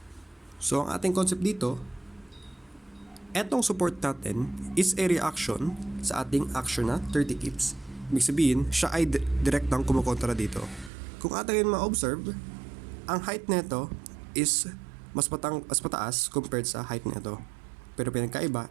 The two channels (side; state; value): left; drops out; at 10.9 s